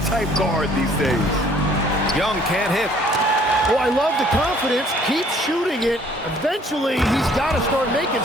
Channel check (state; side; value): normal; both; correlation 0.59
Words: guard these days. Young can't hit. Well, I love the confidence. Keep shooting it. Eventually, he's got to start making